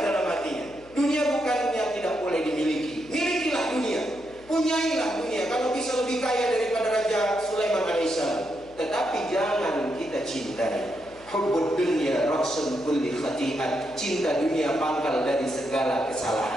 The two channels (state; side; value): noise; left; hum, 25 dB below the sound